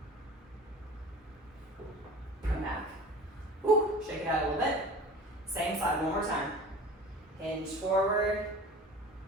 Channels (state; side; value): normal; both; correlation 0.40